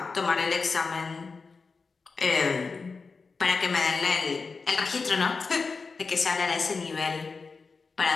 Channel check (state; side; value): quieter; right; 4.5 dB